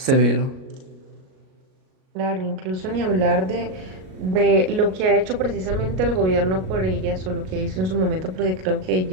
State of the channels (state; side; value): late; left; 38 ms